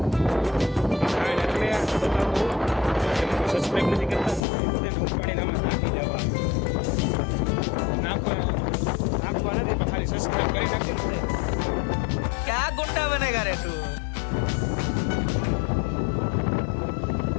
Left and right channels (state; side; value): drops out; right; at 4.4 s